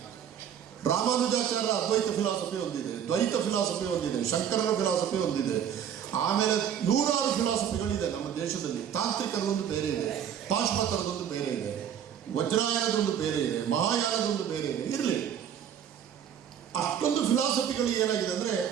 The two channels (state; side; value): quieter; left; 8.9 dB